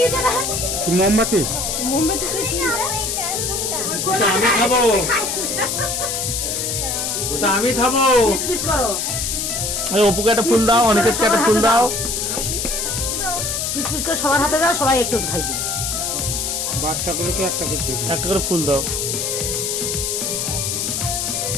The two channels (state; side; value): noise; left; hiss, 1 dB below the sound